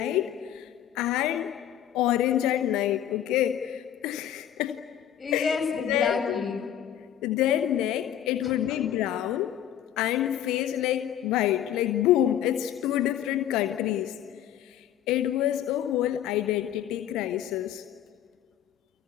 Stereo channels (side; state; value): right; quieter; 10.9 dB